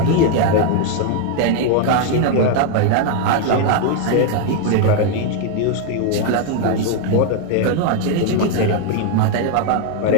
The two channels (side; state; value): both; different; correlation 0.01